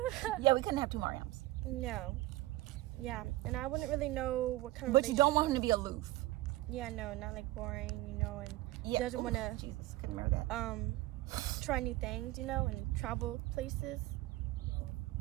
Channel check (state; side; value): quieter; left; 17.6 dB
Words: Yeah, we couldn't have two Mariams. No. Yeah, and I wouldn't really know what kind of. But you don't want him to be aloof. Yeah, no, not like boring, and yeah. Doesn't want to. Jesus, couldn't remember that. Try new things, and travel places.